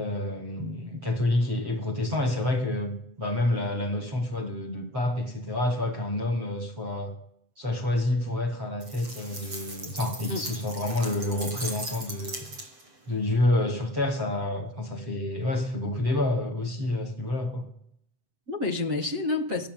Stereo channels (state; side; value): late; left; 7.9 ms